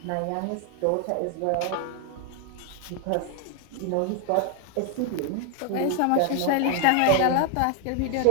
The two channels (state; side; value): different; both; correlation 0.01